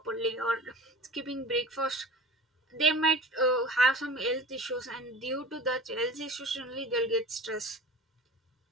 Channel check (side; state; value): both; normal; correlation 0.38